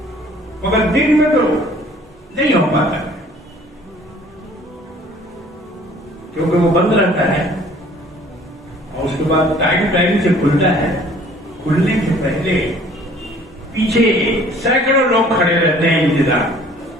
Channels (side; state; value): both; normal; correlation 0.54